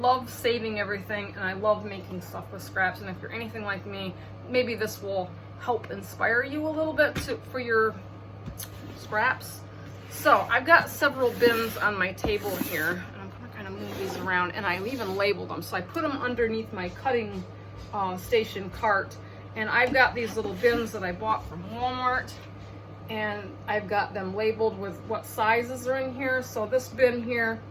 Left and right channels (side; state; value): both; identical; correlation 1.00